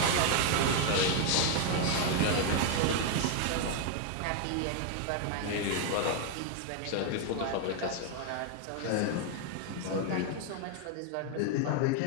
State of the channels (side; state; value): both; different; correlation 0.01